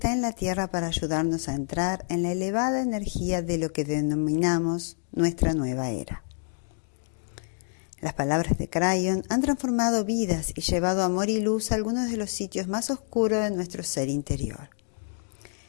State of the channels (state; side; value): silent; right; digital silence